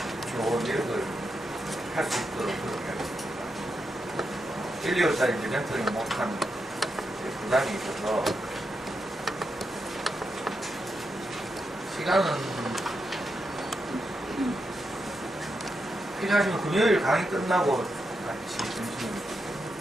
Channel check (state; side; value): normal; both; correlation 0.85